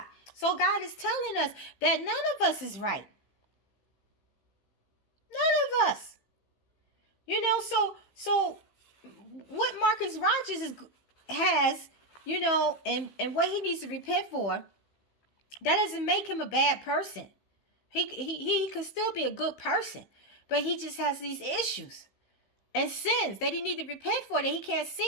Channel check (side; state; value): right; late; 15 ms